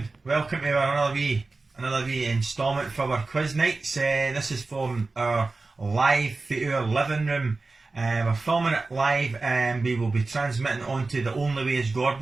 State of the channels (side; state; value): left; quieter; 3.6 dB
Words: Welcome to another wee instalment for our quiz nights. This is from our live Oor Livingroom. We're filming it live, and we will be transmitting onto the Only Way is